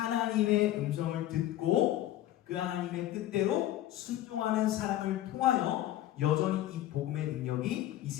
음성을 듣고 그 하나님의 뜻대로 순종하는 사람을 통하여 여전히 이 복음의 능력이 이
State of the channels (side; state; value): right; quieter; 13.8 dB